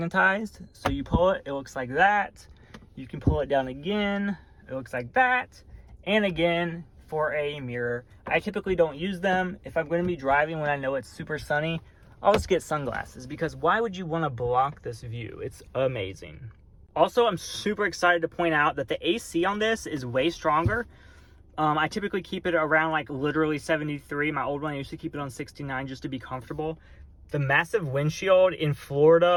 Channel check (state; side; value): identical; both; correlation 1.00